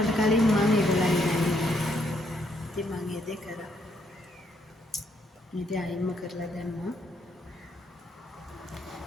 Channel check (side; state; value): both; normal; correlation 0.73